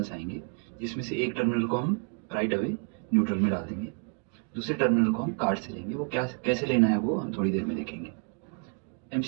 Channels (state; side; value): quieter; left; 37.1 dB